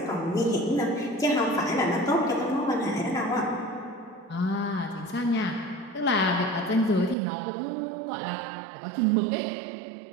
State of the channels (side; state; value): left; drops out; at 7.2 s